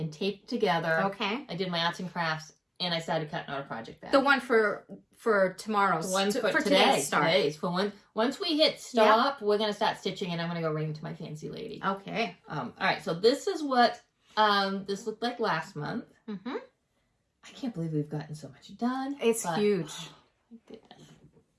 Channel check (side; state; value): both; identical; correlation 1.00